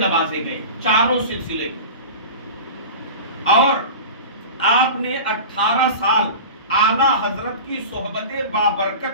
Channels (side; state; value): both; inverted; correlation -0.32